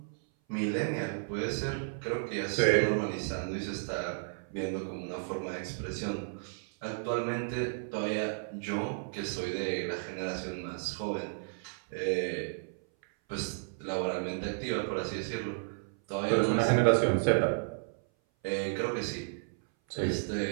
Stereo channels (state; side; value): silent; left; 56 dB below the other